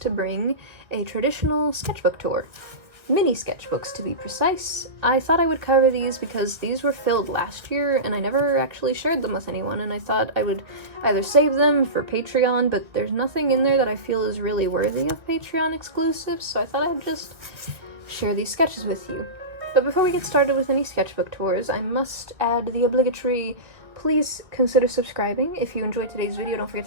bring a traditional sketchbook tour. Mini sketchbooks, to be precise. I thought I would cover these because these were filled last year and I never actually shared them with anyone, and I thought I would either save them for Patreon, but there's nothing in there that I feel is really worthy of Patreon exclusives, so I thought I'd just share these sketches with you. But before we get started with any sketchbook tours, I must add the obligatory please consider subscribing. If you enjoyed today's video, don't forget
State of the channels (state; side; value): late; left; 1.8 ms